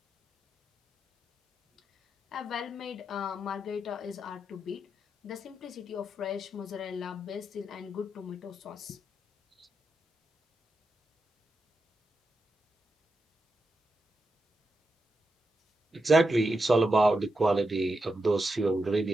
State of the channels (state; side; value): normal; both; correlation 0.87